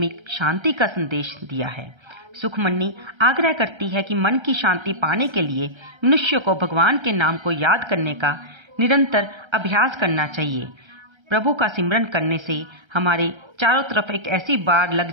शांति का संदेश दिया है। सुखमनी आग्रह करती है कि मन की शांति पाने के लिए मनुष्य को भगवान के नाम को याद करने का निरंतर अभ्यास करना चाहिए। प्रभु का सिमरन करने से हमारे चारों तरफ एक ऐसी बाढ़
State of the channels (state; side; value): late; left; 1.3 ms